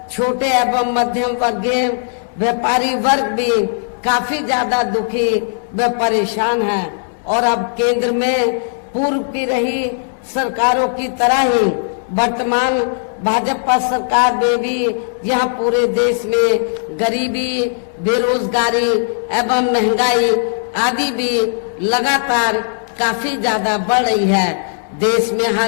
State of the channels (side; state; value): right; silent; 68 dB below the other